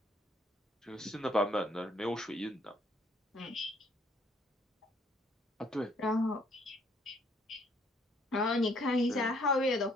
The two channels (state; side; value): normal; both; correlation 0.64